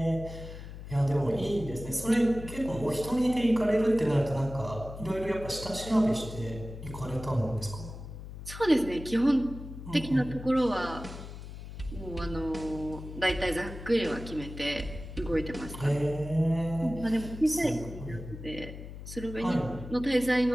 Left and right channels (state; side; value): noise; left; hum, 11 dB below the sound